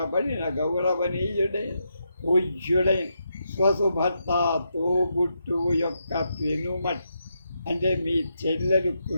గౌరవనీయుడైన పూజ్యుడైన స్వసుభర్త తోబుట్టువు యొక్క పెనుమట్ అంటే మీ చెల్లెలు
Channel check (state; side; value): inverted; both; correlation -0.82